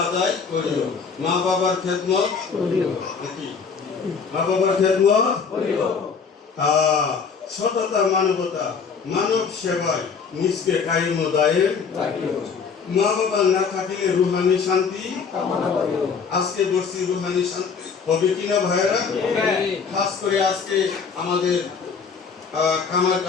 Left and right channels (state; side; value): quieter; right; 5.7 dB